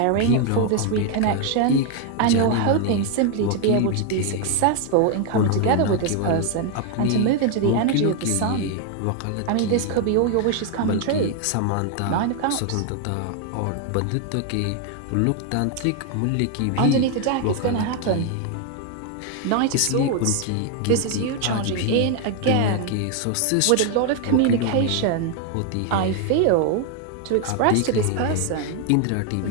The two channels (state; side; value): different; both; correlation 0.01